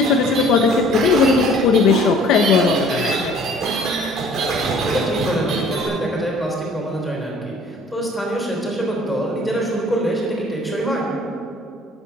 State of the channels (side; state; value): both; normal; correlation 0.53